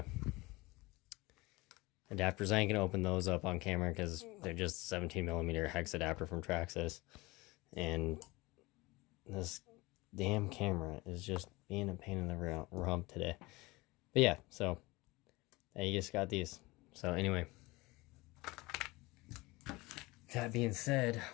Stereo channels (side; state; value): right; quieter; 22.3 dB